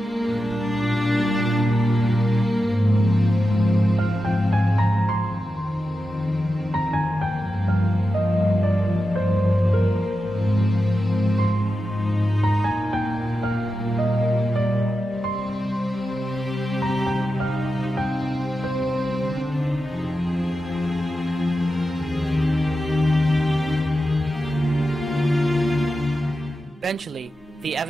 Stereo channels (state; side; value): normal; both; correlation 0.90